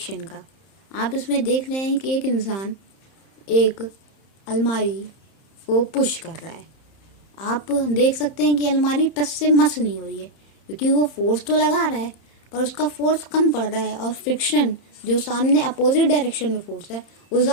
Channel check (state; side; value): late; right; 31 ms